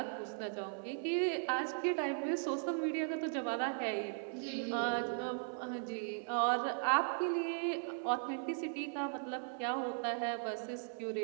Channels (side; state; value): left; silent; 52 dB below the other